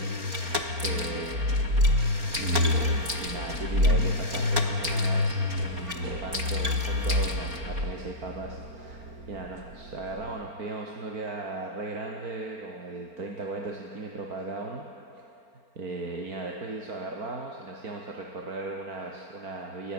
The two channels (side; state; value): left; late; 4.3 ms